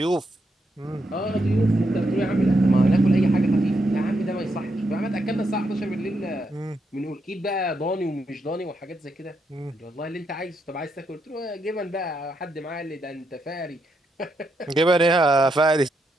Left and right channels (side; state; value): both; normal; correlation 0.81